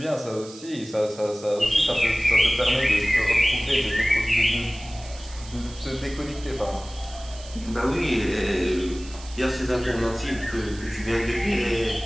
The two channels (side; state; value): right; noise; hiss, 18 dB below the sound